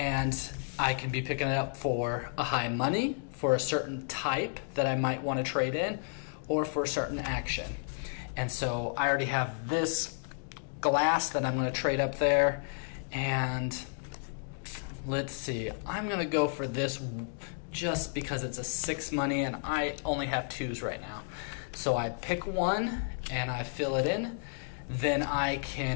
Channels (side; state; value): right; silent; digital silence